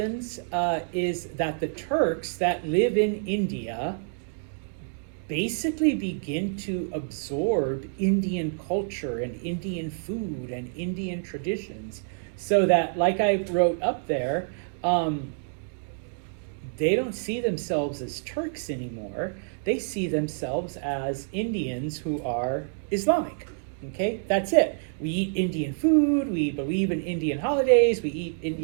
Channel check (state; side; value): silent; left; digital silence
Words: is that the Turks that live in India basically begin to absorb Indian culture and Indian food and Indian traditions, so that, like I wrote up there, they don't see themselves as Turks anymore. They see themselves as Indians who are Islamic. Okay, that's it. We eat Indian food, we believe in Indian holidays, we eat